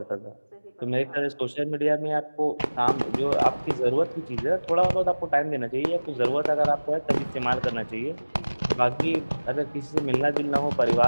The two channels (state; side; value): inverted; both; correlation -1.00